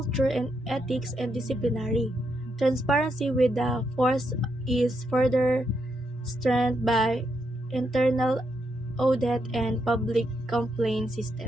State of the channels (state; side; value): normal; both; correlation 0.80